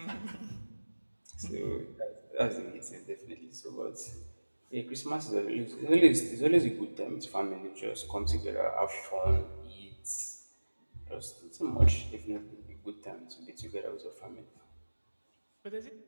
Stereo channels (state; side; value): inverted; both; correlation -1.00